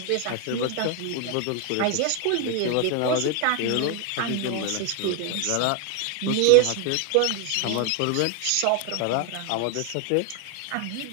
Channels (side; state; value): both; different; correlation 0.00